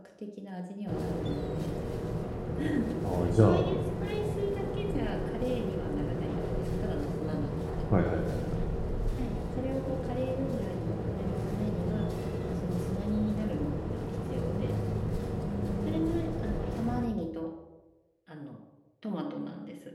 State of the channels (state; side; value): identical; both; correlation 1.00